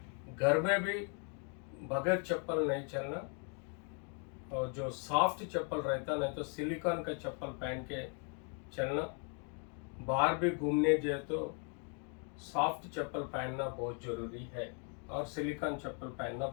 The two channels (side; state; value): right; quieter; 39.6 dB